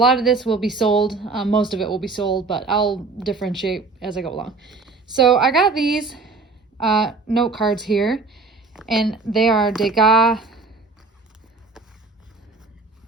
of this will be sold, most of it will be sold, but I'll differentiate as I go along. So I got these note cards here, and they are Degas,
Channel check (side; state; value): left; quieter; 4.0 dB